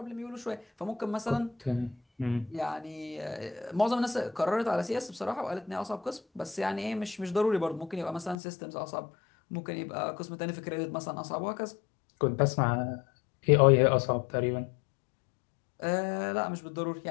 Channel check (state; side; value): drops out; right; at 8.3 s